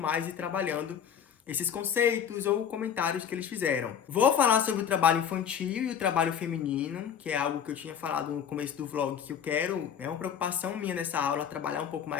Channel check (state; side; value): quieter; right; 8.3 dB